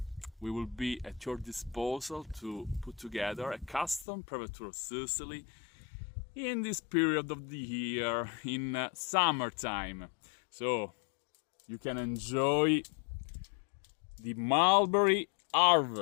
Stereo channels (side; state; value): right; drops out; at 4.0 s